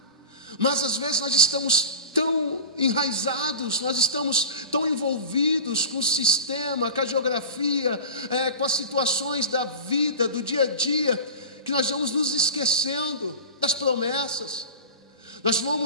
Mas às vezes nós estamos tão enraizados, nós estamos tão envolvidos com o sistema, com a geografia, com as situações da vida, do dia a dia, que nós vamos nos esquecendo das promessas. Nós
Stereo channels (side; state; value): both; inverted; correlation -0.31